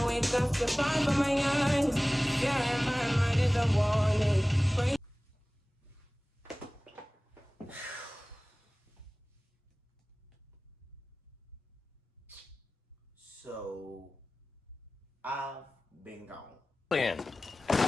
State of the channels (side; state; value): both; normal; correlation 0.98